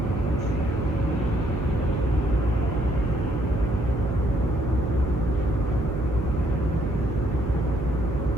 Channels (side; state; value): right; noise; hum, 4 dB below the sound